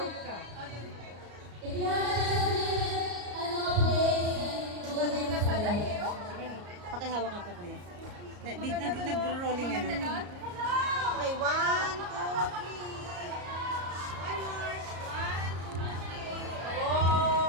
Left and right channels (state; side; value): late; left; 34 ms